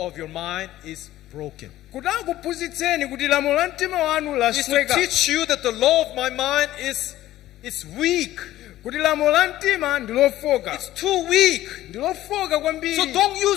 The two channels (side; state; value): right; quieter; 14.6 dB